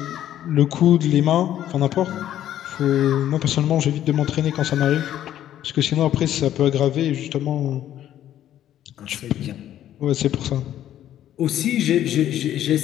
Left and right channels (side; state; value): right; quieter; 11.7 dB